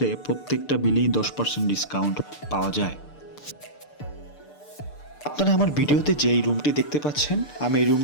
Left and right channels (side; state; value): right; late; 6.7 ms